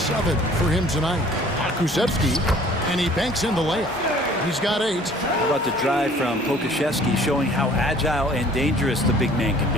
for him tonight. Kusevsky, and he banks in the layup. He's got 8. How about the drive from Pokusevski, showing how agile and dangerous the big man can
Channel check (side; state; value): both; normal; correlation 0.53